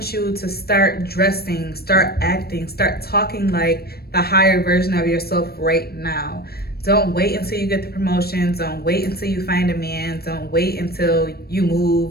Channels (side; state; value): right; late; 0.46 ms